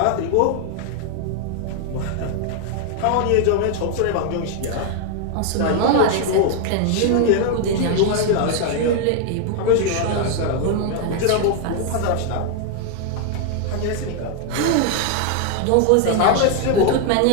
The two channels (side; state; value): both; different; correlation 0.00